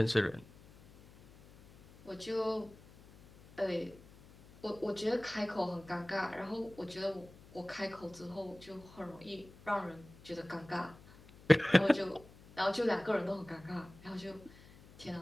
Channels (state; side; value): noise; left; hum, 22 dB below the sound